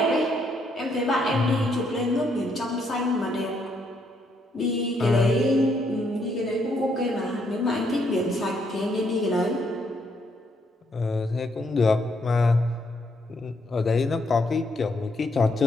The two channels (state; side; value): normal; both; correlation 0.74